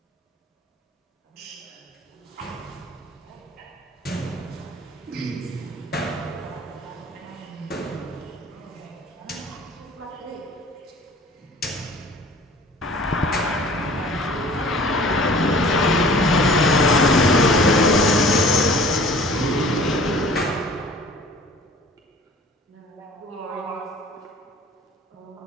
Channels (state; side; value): normal; both; correlation 0.48